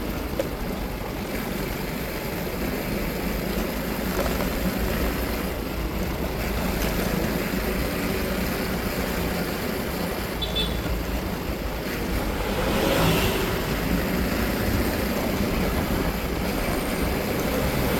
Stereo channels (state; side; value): identical; both; correlation 1.00